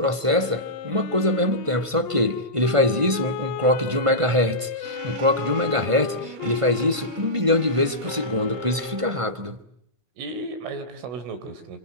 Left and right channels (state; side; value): late; left; 1.5 ms